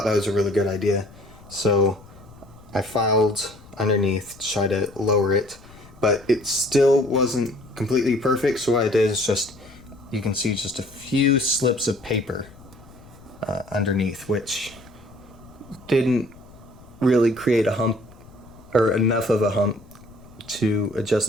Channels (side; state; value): left; noise; rumble, 22 dB below the sound